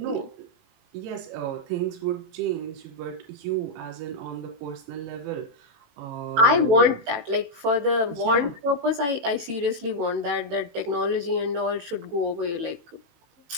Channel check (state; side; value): late; left; 18 ms